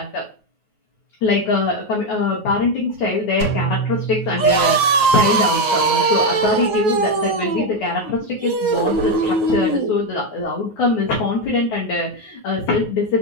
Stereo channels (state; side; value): late; right; 9.5 ms